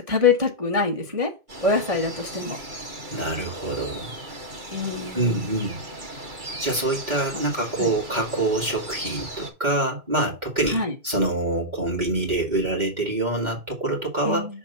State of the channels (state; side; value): late; left; 2.2 ms